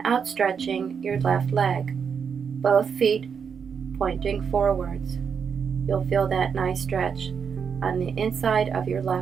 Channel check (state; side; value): quieter; left; 6.6 dB